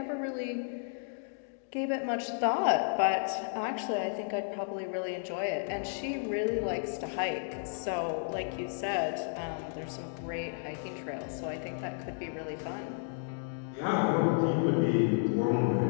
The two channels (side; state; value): right; silent; digital silence